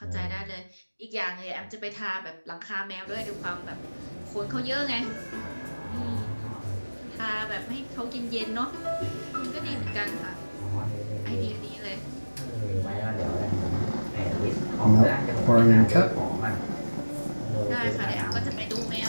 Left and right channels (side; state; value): both; inverted; correlation -1.00